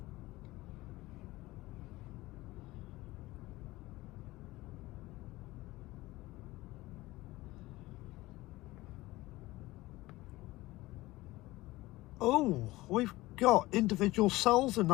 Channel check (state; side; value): quieter; right; 19.0 dB